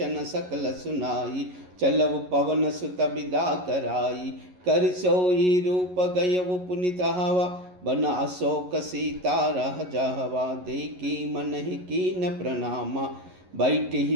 सकल सुनाई चलऊ पवन सुत विदा कराई। कर सोई रूप गयउ पुनित हवा बना शोक सीता रह जावा। देखी मन ही कीन प्रणामा बैठ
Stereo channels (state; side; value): late; left; 11 ms